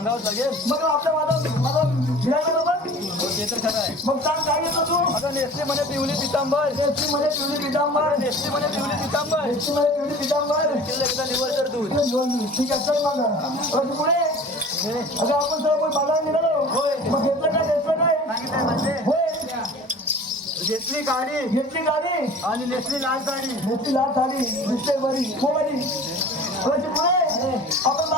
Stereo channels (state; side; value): normal; both; correlation 0.42